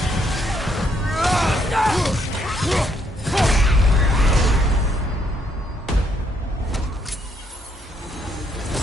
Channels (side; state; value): both; normal; correlation 0.72